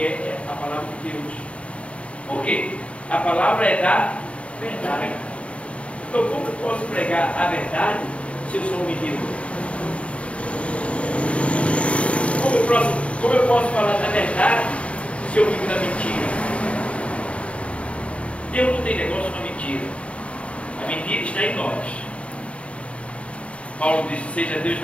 a palavra de Deus. Por quê? A palavra é da verdade. Então, como eu posso pregar a verdade se eu sou um menino? Como eu posso falar da verdade se eu vivo da mentira? Deus não tem negócio com a mentira. A mentira está em nós. Paulo disse, seja Deus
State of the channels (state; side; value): late; right; 0.062 ms